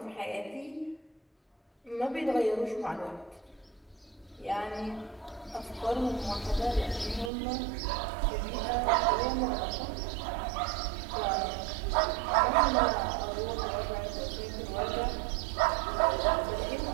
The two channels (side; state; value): left; drops out; at 7.3 s